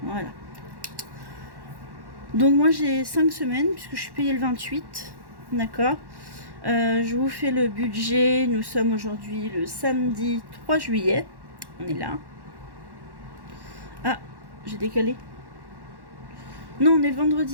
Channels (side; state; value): left; late; 1.1 ms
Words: Voilà. Donc, moi, j'ai 5 semaines, puisque je suis payée le 28. D'accord. Je vous fais le budget. Nous sommes aujourd'hui le samedi 3 juillet. On est là. Ah, j'ai décalé. Non, on est le